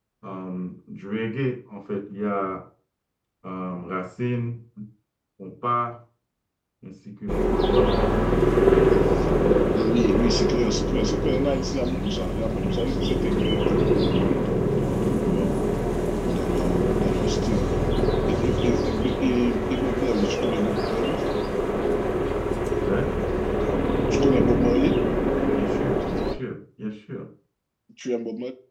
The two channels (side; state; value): both; identical; correlation 1.00